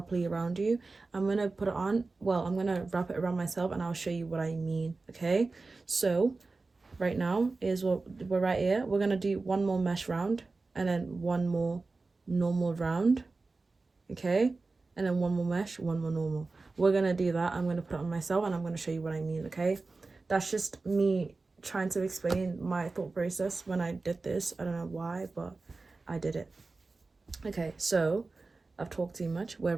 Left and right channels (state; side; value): quieter; left; 3.7 dB